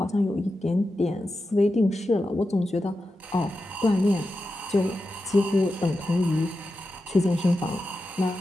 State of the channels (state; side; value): normal; both; correlation 0.91